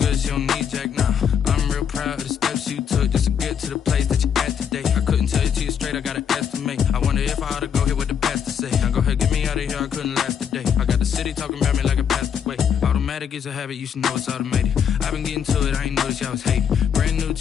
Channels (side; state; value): right; quieter; 7.9 dB